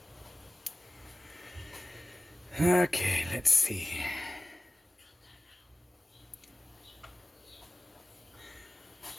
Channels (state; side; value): normal; both; correlation 0.96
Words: Okay, let's see.